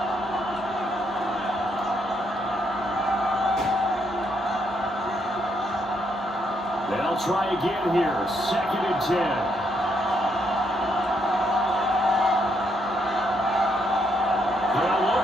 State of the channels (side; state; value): both; normal; correlation 0.75